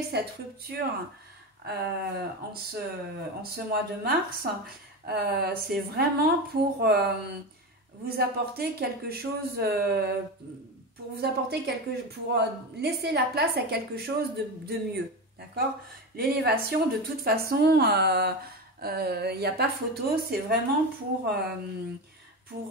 cette rupture en ce mois de mars, c'est vraiment pour vous apporter quelque chose, pour laisser la place à quelque chose de mieux, d'accord? L'élévation, de toute façon, il n'y a pas photo, c'est vraiment pour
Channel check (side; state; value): both; normal; correlation 0.21